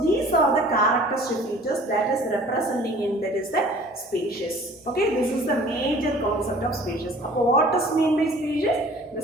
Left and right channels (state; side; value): normal; both; correlation 0.49